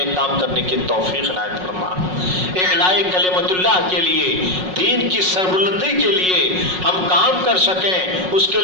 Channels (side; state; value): left; late; 5.5 ms